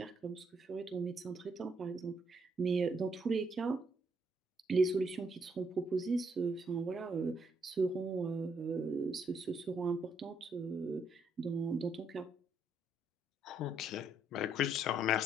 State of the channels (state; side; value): normal; both; correlation 0.73